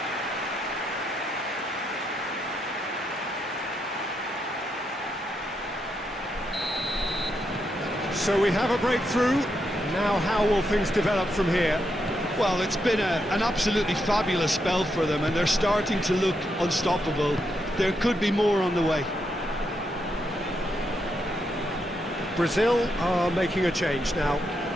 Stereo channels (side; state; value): both; normal; correlation 0.81